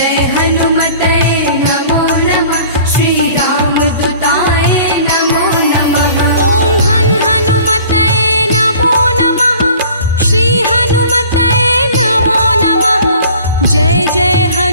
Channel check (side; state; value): both; inverted; correlation -0.48